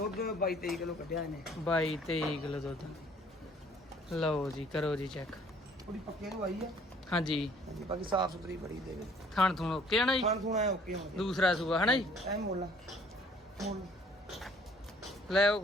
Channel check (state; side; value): normal; both; correlation 0.57